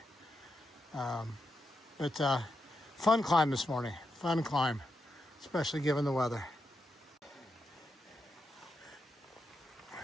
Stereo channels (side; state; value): both; normal; correlation 0.86